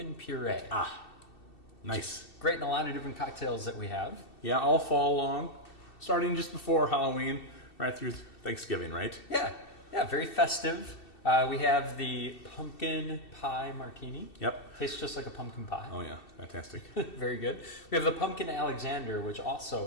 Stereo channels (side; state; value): right; late; 2.7 ms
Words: puree. Nice. Great in a lot of different cocktails that we have. Yeah, all fall long, starting just before Halloween, right through Thanksgiving, right? Yeah, very festive. We have the Pumpkin Pie Martini. Yep. Tastes just like a pumpkin pie. Oh yeah, fantastic. Very good. We have the Pumpkin Alexander, which